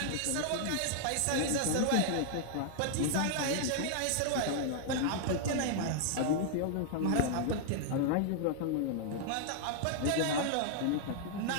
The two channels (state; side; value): different; both; correlation 0.00